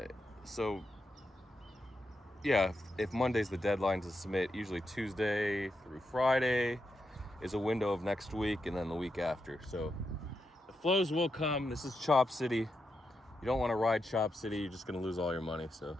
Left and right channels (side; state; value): both; normal; correlation 0.85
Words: So yeah, if Monday's the deadline to submit, usually Tuesday through Friday is a window of next week, and then the week after. So the flows will come. This is Chop City. You don't want to ride Chop City. You're just going to lose all your money. So